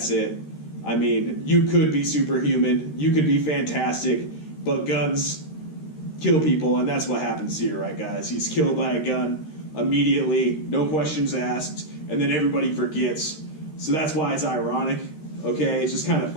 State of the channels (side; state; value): right; late; 13 ms